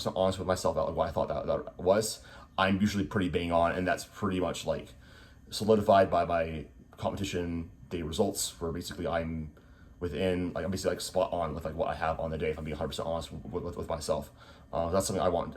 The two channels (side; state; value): both; identical; correlation 1.00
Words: honest with myself about what I thought that was, I'm usually pretty bang on, and that's pretty much like solidified by my competition day results, where basically I'm within, like I'm basically like spot on with like what I have on the day, if I'm being 100% honest with myself. That's something I want,